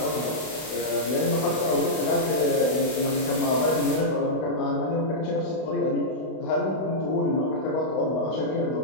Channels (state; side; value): late; right; 32 ms